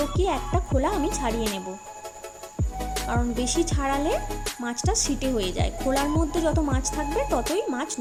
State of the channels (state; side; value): identical; both; correlation 1.00